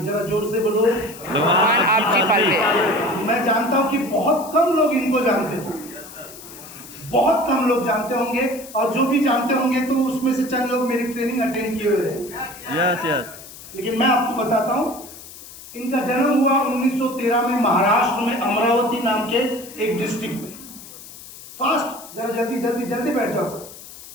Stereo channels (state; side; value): noise; left; hiss, 16 dB below the sound